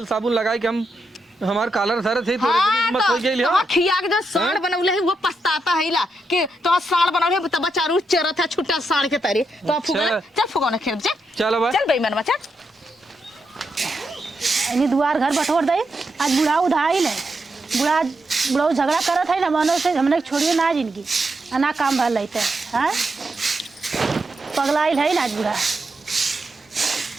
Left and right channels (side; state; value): both; normal; correlation 0.83